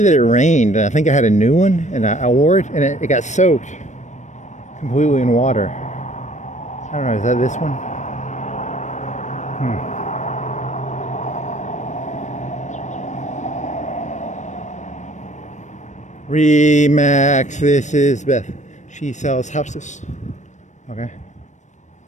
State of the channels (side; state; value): right; late; 0.35 ms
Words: it rained, and I think I had a new one, and I wore it, and it got soaked completely in water. I don't know, is that this one? Remax, this is Beth. She sells houses. Okay.